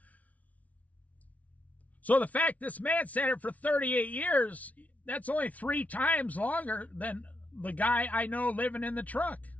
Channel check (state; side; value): late; right; 0.069 ms